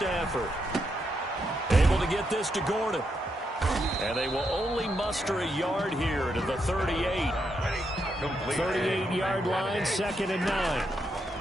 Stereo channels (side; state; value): both; normal; correlation 0.81